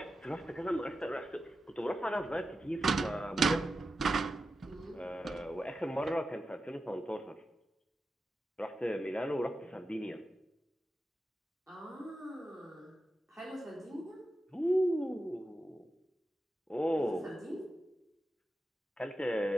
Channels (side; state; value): both; normal; correlation 0.91